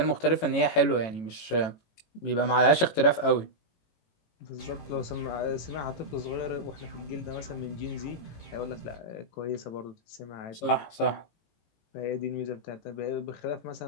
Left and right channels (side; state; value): right; late; 18 ms